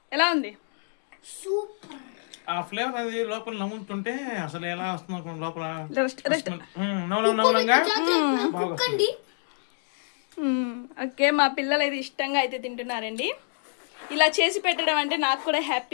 ఎలా ఉంది? సూపర్. ఆ ఫ్లేవర్ అది లోపల నమ్ముతుంటే అసలు ఎలా వస్తుంది లోపల. కుక్కండి. ఓకే, మా పిల్లలు అయితే ఇష్టంగా అయితే తింటున్నారండి. ఇలా చేసి పెట్టడం అంటే నాకు కూడా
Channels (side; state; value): right; silent; digital silence